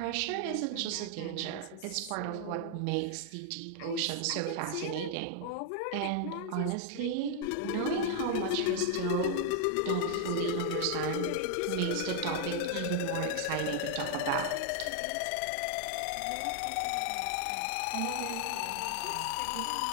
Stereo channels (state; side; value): different; both; correlation 0.00